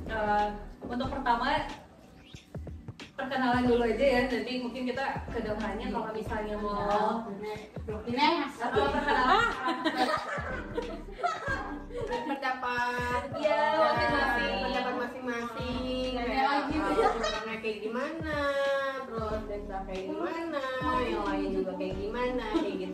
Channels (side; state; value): both; identical; correlation 1.00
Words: Untuk pertama perkenalan dulu aja ya, nanti mungkin kita kedepannya kalau misalnya mau atau perkenalan pendapat Iya, masing-masing. pendapat masing-masing orangnya kayak gimana, terus Desa kayak gimana, yang lain juga kayak gimana, kayak